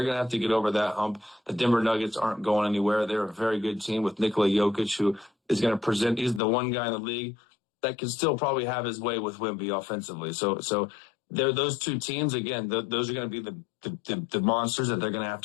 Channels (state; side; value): drops out; right; at 6.4 s